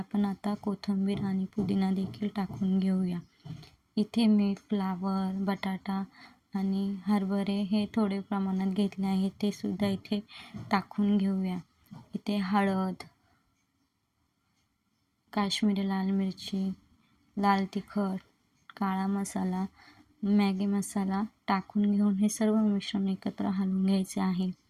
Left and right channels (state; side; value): identical; both; correlation 1.00